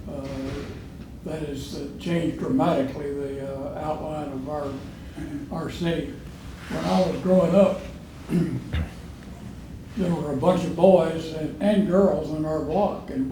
that has changed dramatically the outline of our city. When I was growing up, there were a bunch of boys and girls in our block, and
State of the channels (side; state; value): both; identical; correlation 1.00